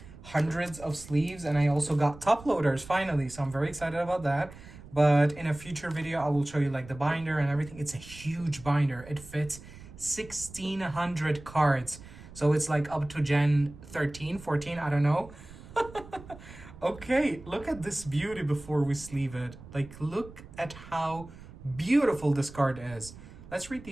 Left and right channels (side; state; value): right; noise; rumble, 17 dB below the sound